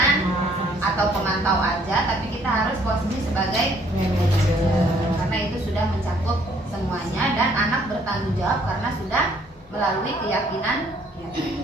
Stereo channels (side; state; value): both; normal; correlation 0.63